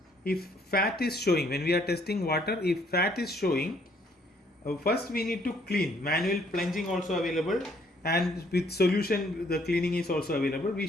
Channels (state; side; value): normal; both; correlation 0.65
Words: if fat is showing, when we are testing water, if fat is showing, first we need to clean. Manual plunging also available, and with solution the cleaning is also available. We